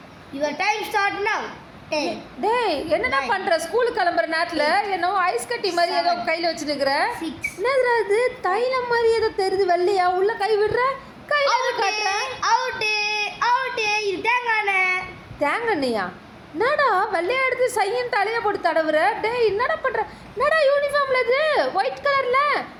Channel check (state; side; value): identical; both; correlation 1.00